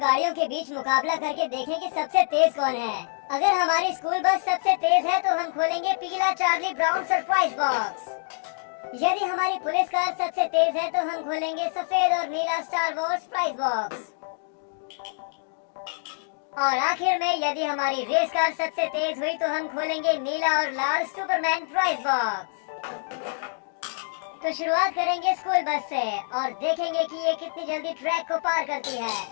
गाड़ियों के बीच मुकाबला करके देखें कि सबसे तेज कौन है। अगर हमारी स्कूल बस सबसे तेज है तो हम खोलेंगे पीला चार्ली ब्राउन सरप्राइज बॉक्स। यदि हमारी पुलिस कार सबसे तेज है तो हम खोलेंगे सफेद और नीला स्टार वॉर्स प्राइज बॉक्स। और आखिर में यदि हमारी रेस कार सबसे तेज हुई तो हम खोलेंगे नीला और लाल सुपरमैन प्राइज बॉक्स। तो शुरुआत करेंगे स्कूल बस से और देखेंगे कि ये कितनी जल्दी ट्रैक को पार करती है।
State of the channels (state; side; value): silent; right; digital silence